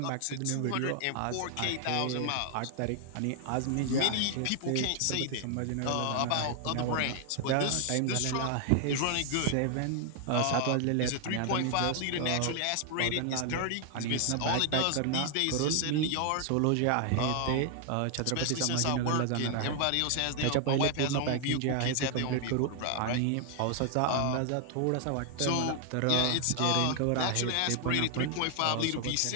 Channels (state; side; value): different; both; correlation 0.00